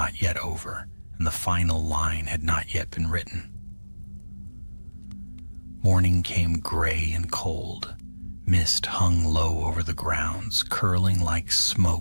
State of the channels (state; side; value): inverted; both; correlation -1.00